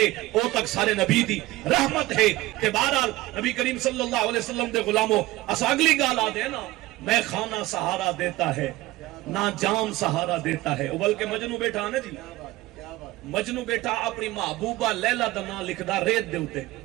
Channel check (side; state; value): left; quieter; 18.3 dB